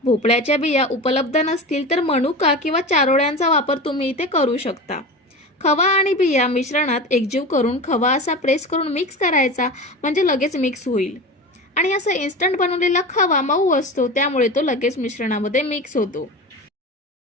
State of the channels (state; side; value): normal; both; correlation 0.29